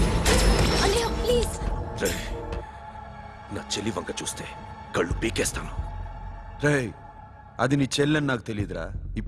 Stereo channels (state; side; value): identical; both; correlation 1.00